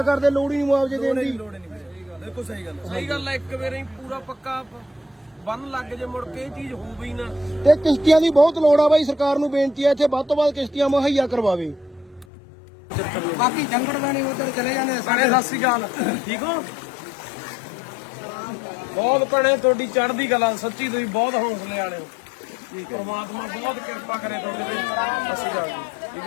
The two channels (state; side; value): drops out; right; at 12.2 s